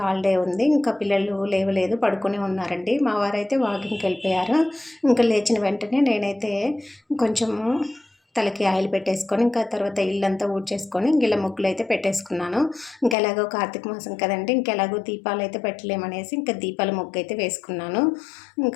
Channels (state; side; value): drops out; right; at 13.2 s